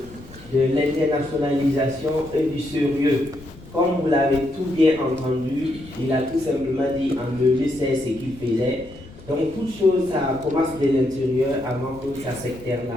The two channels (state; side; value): noise; left; rumble, 19 dB below the sound